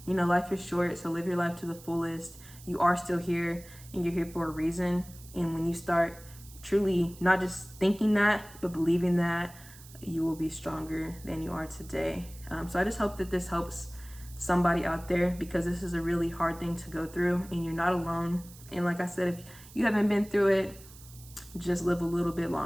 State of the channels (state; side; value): noise; right; hiss, 20 dB below the sound